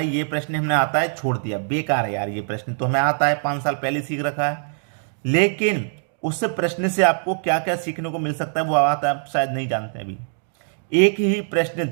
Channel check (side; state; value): left; silent; digital silence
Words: ये प्रश्न हमें आता है, छोड़ दिया, बेकार है यार, ये प्रश्न तो हमें आता है, 5 साल पहले सीख रखा है। लेकिन उस प्रश्न से आपको क्या क्या सीखने को मिल सकता है वो आप शायद नहीं जानते अभी। एक ही प्रश्न